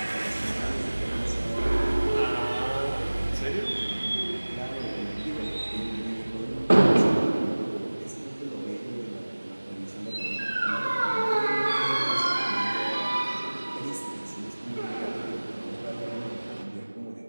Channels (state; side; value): inverted; both; correlation -1.00